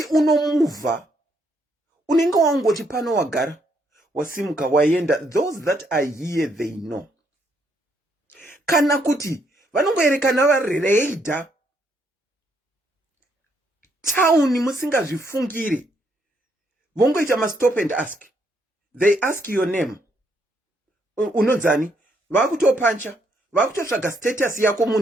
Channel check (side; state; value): both; normal; correlation 0.73